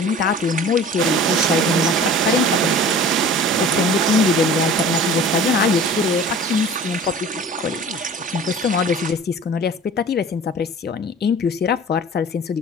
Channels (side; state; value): both; normal; correlation 0.43